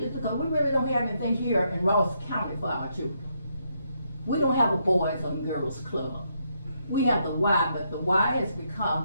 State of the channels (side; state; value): both; inverted; correlation -0.77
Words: is because we really don't have anything here in Ross County for our children. We don't have a boys and girls club. We have the Y, but the Y has